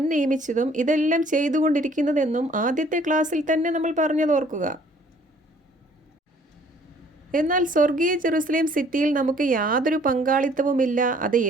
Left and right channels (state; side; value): normal; both; correlation 0.58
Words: നിയമിച്ചതും ഇതെല്ലാം ചെയ്തുകൊണ്ടിരിക്കുന്നതെന്നും ആദ്യത്തെ ക്ലാസ്സിൽ തന്നെ നമ്മൾ പറഞ്ഞതോർക്കുക. എന്നാൽ സ്വർഗീയ ജെറുസലേം സിറ്റിയിൽ നമുക്ക് യാതൊരു പങ്കാളിത്തവുമില്ല, അത്